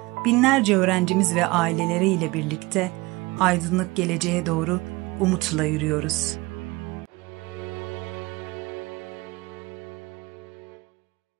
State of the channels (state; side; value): quieter; left; 22.1 dB